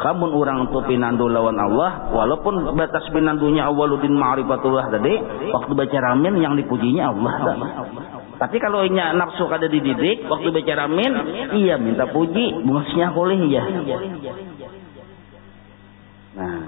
mun orang tu pinandu lawan Allah, walaupun batas pinandunya awwaluddin ma'rifatullah tadi, waktu baca ramin yang dipujinya Allah. Tapi kalau inya nafsu kada dididik, waktu baca ramin, iya minta puji, bungusnya boleh ya. Nah,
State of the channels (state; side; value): silent; right; digital silence